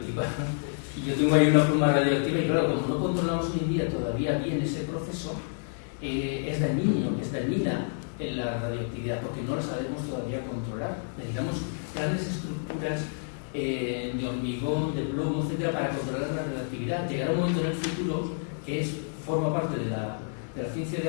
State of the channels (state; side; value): silent; right; digital silence